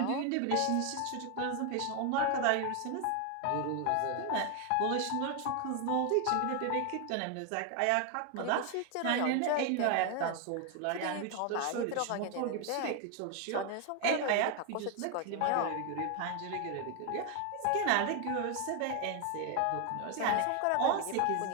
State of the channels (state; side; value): different; both; correlation 0.01